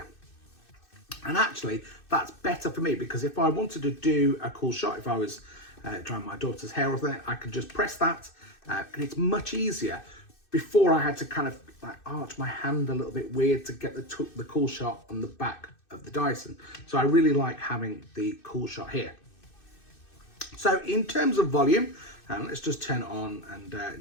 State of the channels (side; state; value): right; late; 2.6 ms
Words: And actually, that's better for me, because if I wanted to do a cool shot, if I was drying my daughter's hair or something, I could just press that, and it's much easier. Before, I had to kind of like arch my hand a little bit weird to get the cool shot on the back of the Dyson. So I really like having the cool shot here. So in terms of volume, let's just turn it on, and